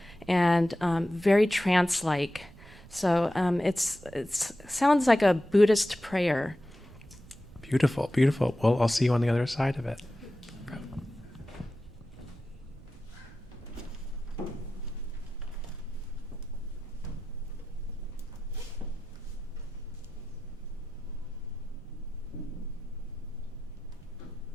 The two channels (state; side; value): noise; right; rumble, 20 dB below the sound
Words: and very trance-like. So it sounds like a Buddhist prayer. Beautiful, beautiful. Well, I'll see you on the other side of it.